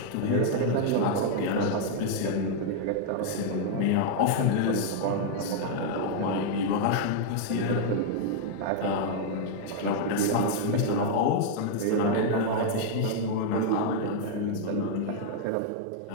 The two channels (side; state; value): both; different; correlation -0.01